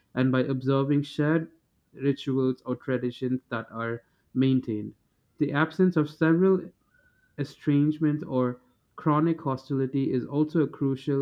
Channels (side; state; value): both; identical; correlation 1.00